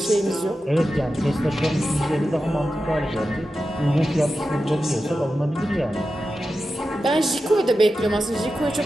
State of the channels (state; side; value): normal; both; correlation 0.92